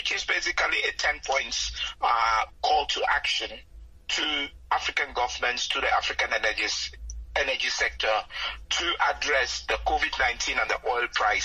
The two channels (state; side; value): identical; both; correlation 1.00